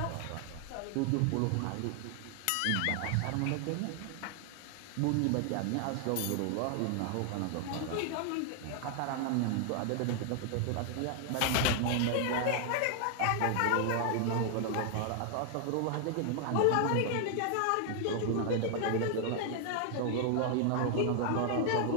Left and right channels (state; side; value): different; both; correlation 0.00